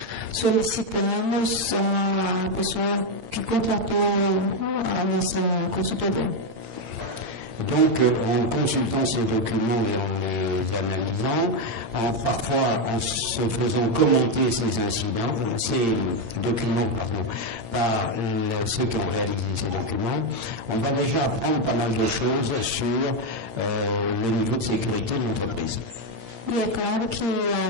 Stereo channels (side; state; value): left; late; 8.8 ms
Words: solicitamos a pessoa que contratou a nossa consultoria. Donc, en consultant ces documents et en les analysant, parfois en se faisant commenter ces documents par ceux qui ont réalisé ces documents, on va déjà apprendre pas mal de choses sur le niveau de sécurité de l'entreprise. E é claro que a